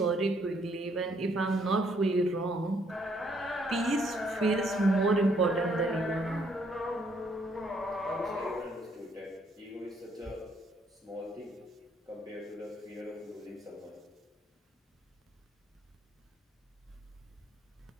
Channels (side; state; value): both; normal; correlation 0.69